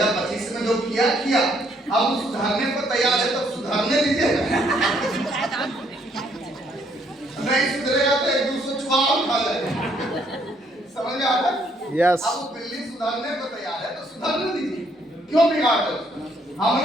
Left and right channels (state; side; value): normal; both; correlation 0.69